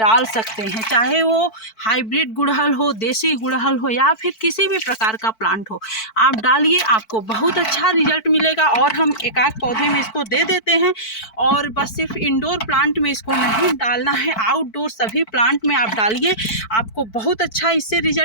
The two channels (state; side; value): late; right; 4.5 ms